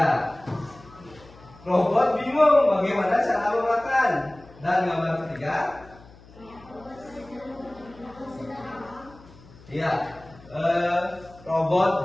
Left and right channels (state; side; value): noise; left; hum, 23 dB below the sound